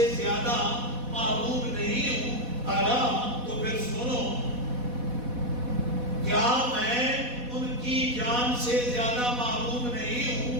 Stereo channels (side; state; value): left; late; 4.1 ms